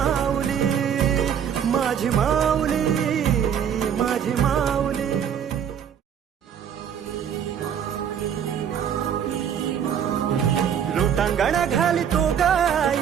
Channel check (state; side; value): quieter; left; 8.4 dB